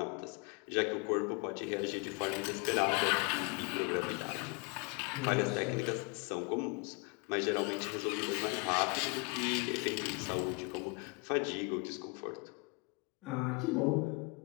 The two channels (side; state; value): right; quieter; 30.7 dB